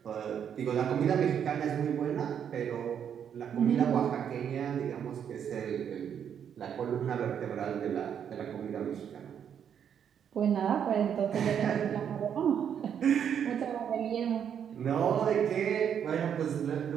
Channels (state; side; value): quieter; left; 8.4 dB